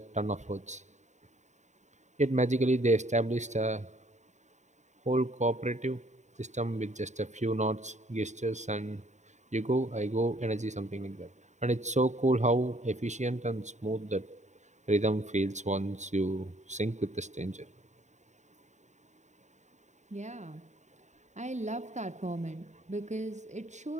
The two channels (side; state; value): left; late; 0.34 ms